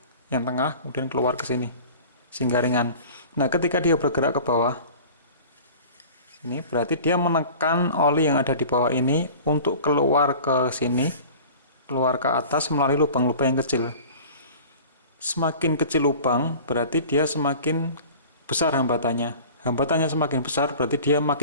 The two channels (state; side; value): inverted; both; correlation -0.42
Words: yang tengah, kemudian keluar ke sini sehingga ringan. Nah, ketika dia bergerak ke bawah ini berarti dia menekan oli yang ada di bawah ini untuk keluar ke sini, keluar ke atas melalui lubang-lubang yang kecil. Semakin kecil lubang berarti dia semakin besar hambatannya. Hambatannya semakin besar berarti dia